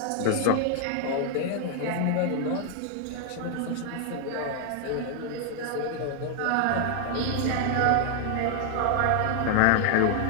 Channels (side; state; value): both; different; correlation 0.00